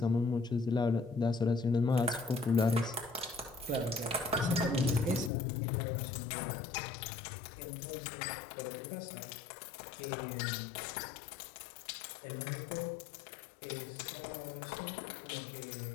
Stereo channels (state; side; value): drops out; right; at 5.3 s